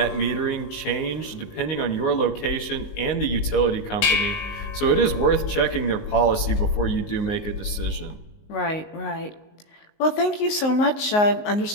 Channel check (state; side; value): late; right; 19 ms